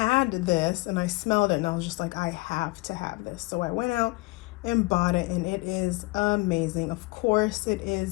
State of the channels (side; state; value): right; quieter; 23.7 dB